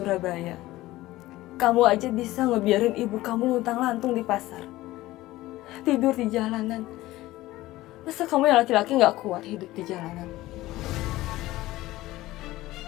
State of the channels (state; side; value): quieter; right; 17.2 dB